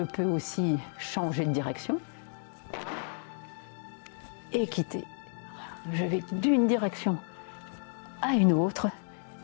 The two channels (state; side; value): silent; right; 57 dB below the other